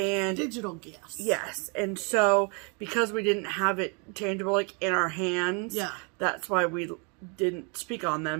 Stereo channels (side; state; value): left; quieter; 34.7 dB